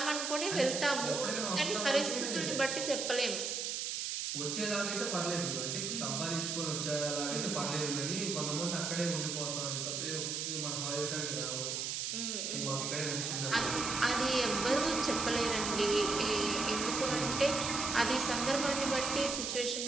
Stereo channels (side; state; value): right; noise; hiss, 2 dB below the sound